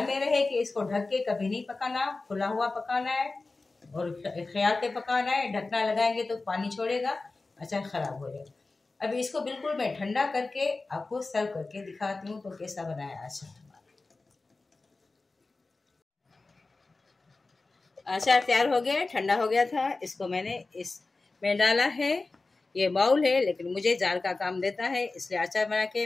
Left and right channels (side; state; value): right; quieter; 3.5 dB